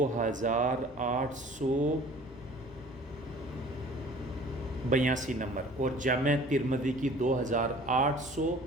نمبر، اور جامع ترمذی کی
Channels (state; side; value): normal; both; correlation 0.48